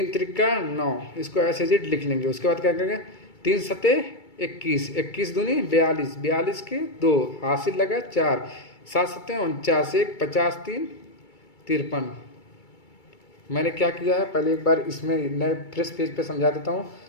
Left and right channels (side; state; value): right; late; 2.3 ms